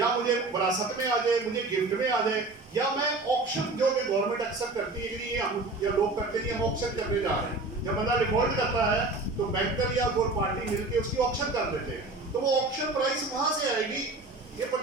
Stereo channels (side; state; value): left; quieter; 3.2 dB